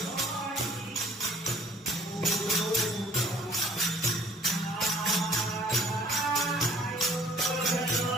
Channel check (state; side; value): normal; both; correlation 0.55